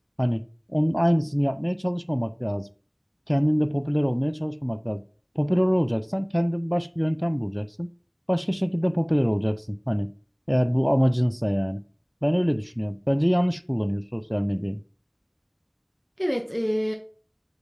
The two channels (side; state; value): both; identical; correlation 1.00